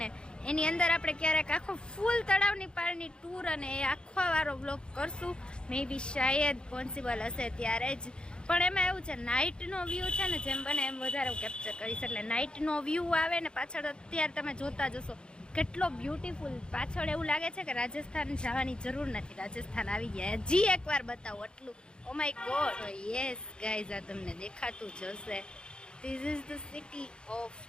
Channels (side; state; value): right; late; 0.051 ms